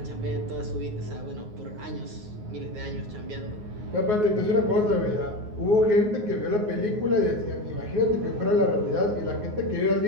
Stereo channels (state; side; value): late; left; 9.5 ms